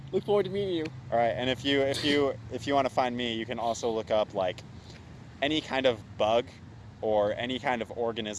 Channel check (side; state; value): both; identical; correlation 1.00